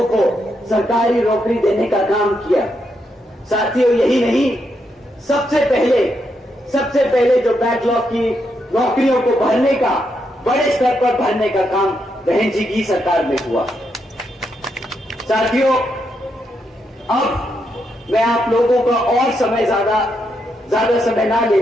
को सरकारी नौकरी देने का काम किया। साथियों, यही नहीं, सबसे पहले जो बैकलॉग की नौकरियों को भरने का, बड़े स्तर पर भरने का काम बहन जी की सरकार में हुआ। साथियों, अब मैं आप लोगों का और ज्यादा समय ना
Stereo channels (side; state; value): both; normal; correlation 0.80